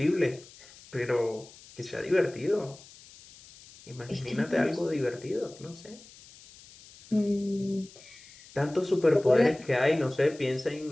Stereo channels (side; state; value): left; noise; hiss, 22 dB below the sound